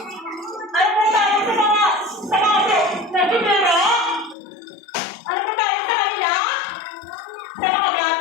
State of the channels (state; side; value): drops out; right; at 4.4 s